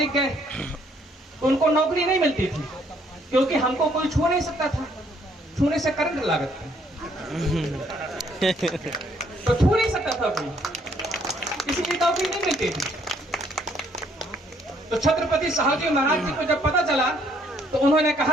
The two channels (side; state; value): both; normal; correlation 0.66